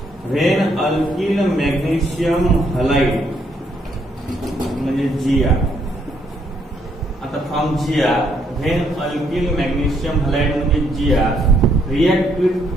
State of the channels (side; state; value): both; normal; correlation 0.71